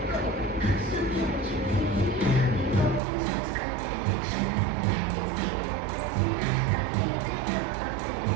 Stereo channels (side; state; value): left; drops out; at 3.0 s